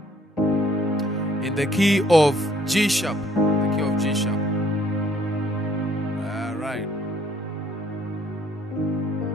G sharp. The key of G sharp. Alright.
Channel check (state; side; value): normal; both; correlation 0.62